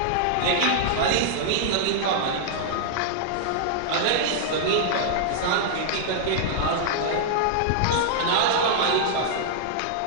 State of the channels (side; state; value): both; different; correlation -0.01